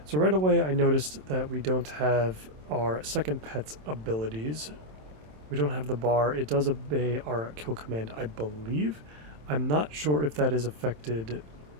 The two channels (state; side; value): late; left; 27 ms